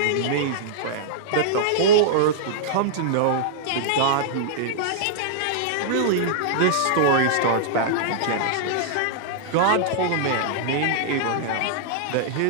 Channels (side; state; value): both; different; correlation -0.02